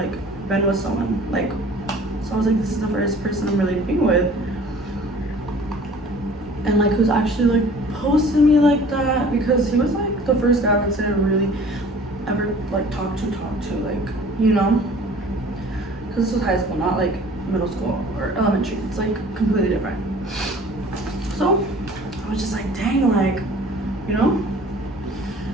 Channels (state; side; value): normal; both; correlation 0.49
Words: been with someone, like, so I was like, this is the first person I'm really being with, and like who's actually like posting me like that, because he was like the first guy I would say I really ever like talk to, like, you know, because this was high school, not like middle school or elementary. It's like completely different. So I was just like, dang, like, you know,